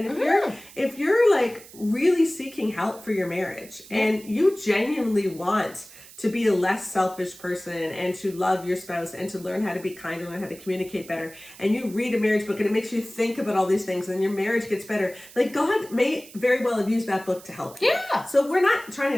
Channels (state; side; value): noise; right; hiss, 19 dB below the sound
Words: if you're like really seeking help for your marriage and you genuinely want to be a less selfish person and to love your spouse and to learn how to be kinder, learn how to communicate better, and you read a marriage book and it makes you think about all these things and your marriage gets better, like, God may very well have used that book to help you. So we're not trying